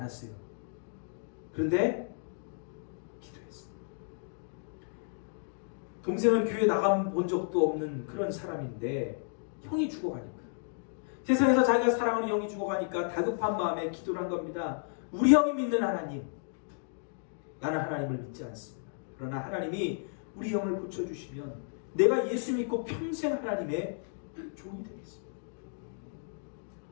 그런데 기도했어요. 동생은 교회 나가본 적도 없는 그런 사람인데 형이 죽어가니까, 세상에서 자기가 사랑하는 형이 죽어가니까 다급한 마음에 기도를 한 겁니다. 우리 형이 믿는 하나님, 나는 하나님을 믿지 않습니다. 그러나 하나님이 우리 형을 고쳐주시면 내가 예수 믿고 평생 하나님의 종이 되겠습니다.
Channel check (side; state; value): right; silent; digital silence